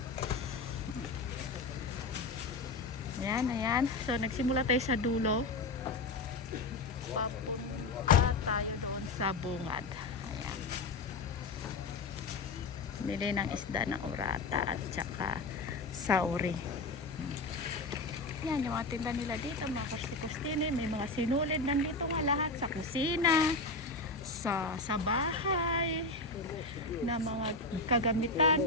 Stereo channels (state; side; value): quieter; right; 3.4 dB